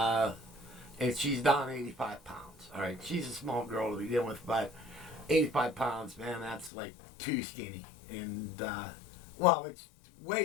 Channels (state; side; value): drops out; right; at 6.7 s